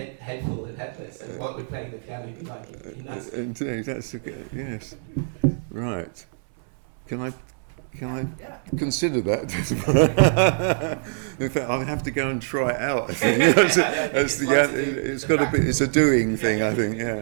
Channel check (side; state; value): left; silent; 62 dB below the other